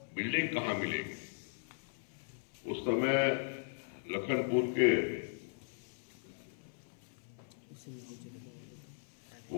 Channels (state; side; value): silent; right; 52 dB below the other